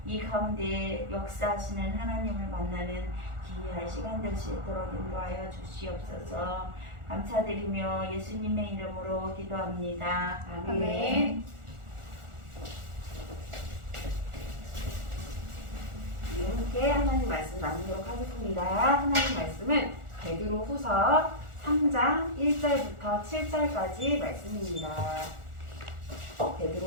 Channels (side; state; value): left; late; 1.4 ms